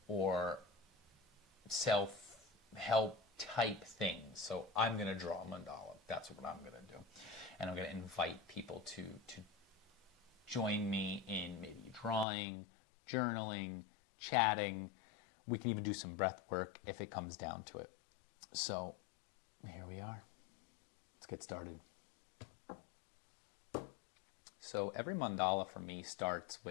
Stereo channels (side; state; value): right; drops out; at 12.2 s